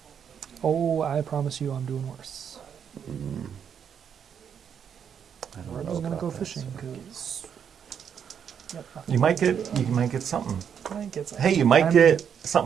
Oh, I promise you, I'm doing worse. I don't We're know just gonna about go that, fishing so- because. Yep, You might get something. might get some. Hey, you might I'm- get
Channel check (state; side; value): quieter; left; 7.9 dB